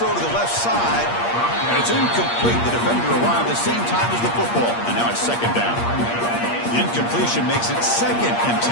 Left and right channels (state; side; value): late; right; 8.6 ms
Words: to the left side, and it's incomplete. The defender arrived at the same time as the football, and now it's second down. The incompletion makes it 2nd and 10